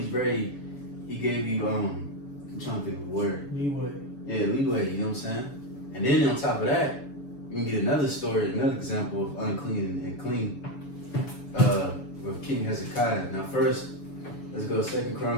gave you I'm trying to think of the word. Leeway. Yeah, leeway, you know what I'm saying? And then on top of that, you can get another story, another example of unclean and clean with King Hezekiah. Now first, let's go 2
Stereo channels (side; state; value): right; late; 7.0 ms